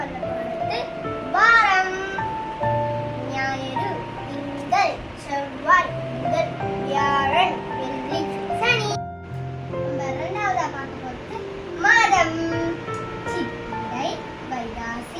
போறது வாரம். ஞாயிறு, திங்கள், செவ்வாய், புதன், வியாழன், வெள்ளி, சனி. நம்ம இரண்டாவதா பார்க்க போறது மாதம். சித்திரை,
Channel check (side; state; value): both; identical; correlation 1.00